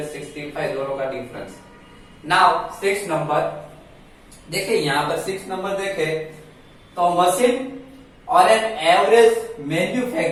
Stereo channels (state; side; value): identical; both; correlation 1.00